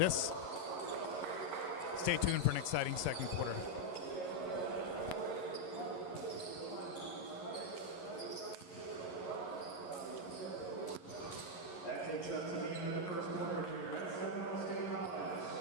Stay tuned for an exciting second quarter. That takes us to the end of the first quarter here at Seminole State College.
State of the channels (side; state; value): right; late; 11 ms